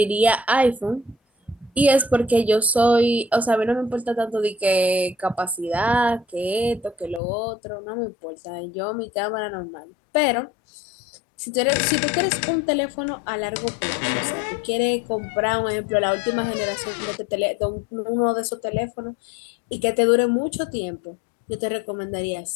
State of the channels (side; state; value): right; drops out; at 7.2 s